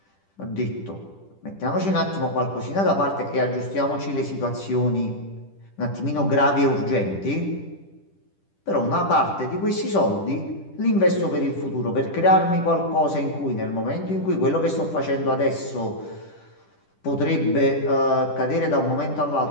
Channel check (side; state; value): right; late; 10 ms